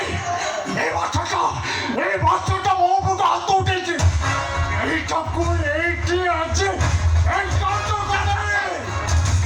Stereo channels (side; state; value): both; identical; correlation 1.00